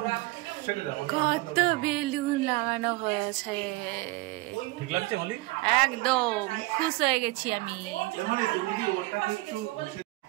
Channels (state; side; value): quieter; left; 21.6 dB